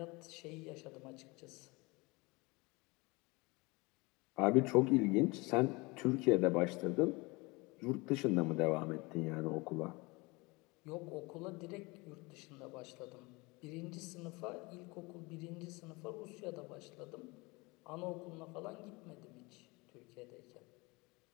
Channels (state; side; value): quieter; right; 25.2 dB